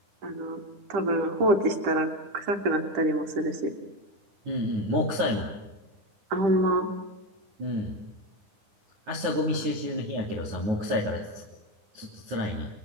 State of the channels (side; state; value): left; late; 10 ms